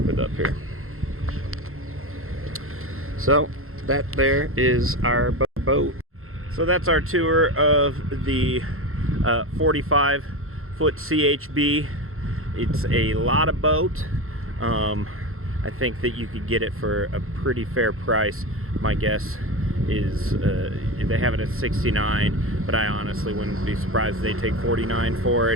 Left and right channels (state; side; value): late; left; 0.62 ms